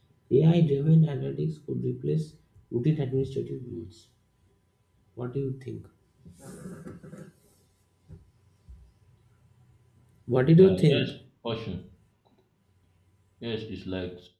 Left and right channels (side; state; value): both; identical; correlation 1.00